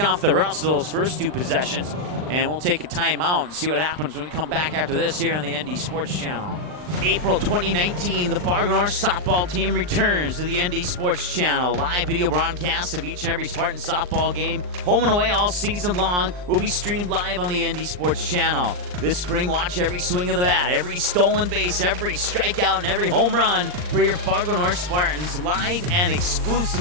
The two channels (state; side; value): late; left; 39 ms